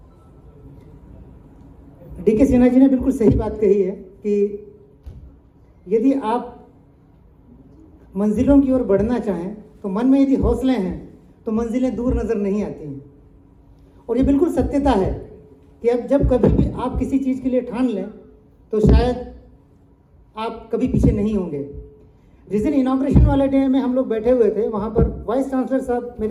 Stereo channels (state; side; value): identical; both; correlation 1.00